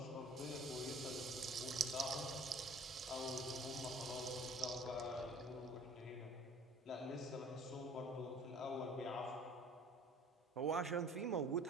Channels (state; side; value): normal; both; correlation 0.50